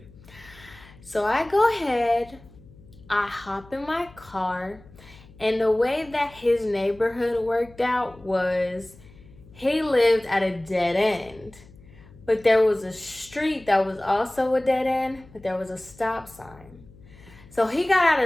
So I go ahead, I hop in my car, and the way that his neighborhood worked out was he lived at a dead end. But there was a street that was also a dead end, but there was a stop sign. So he got out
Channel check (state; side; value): noise; left; hum, 23 dB below the sound